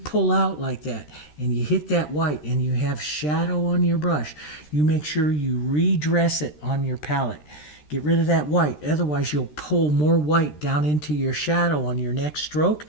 out like that and you hit that white and you have shadow on your brush, you make sure you redress it on your palette. Get rid of that white. Otherwise, you'll pull more white down into your shadow on your next stroke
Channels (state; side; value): late; right; 13 ms